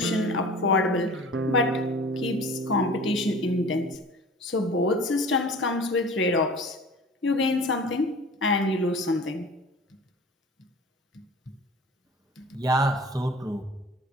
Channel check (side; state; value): both; normal; correlation 0.41